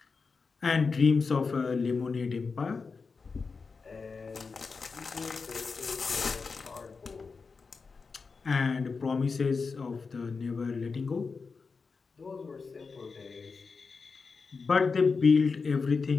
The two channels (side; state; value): right; quieter; 4.8 dB